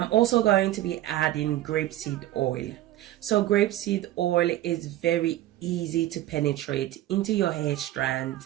also going to be adding grapeseed oil. So grapeseed oil is very easy to penetrate into your hair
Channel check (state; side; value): quieter; left; 14.5 dB